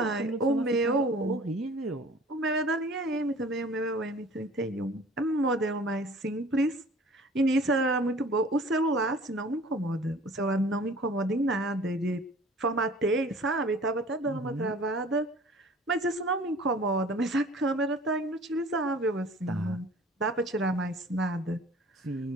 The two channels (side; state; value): both; normal; correlation 0.48